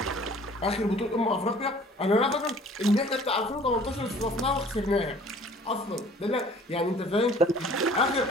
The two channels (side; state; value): both; normal; correlation 0.51